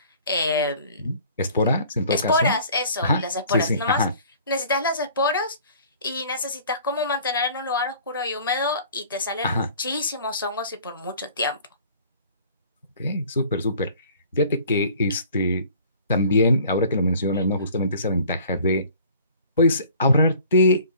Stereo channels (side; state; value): both; inverted; correlation -0.50